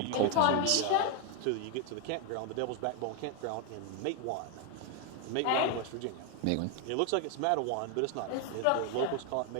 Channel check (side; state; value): both; different; correlation 0.01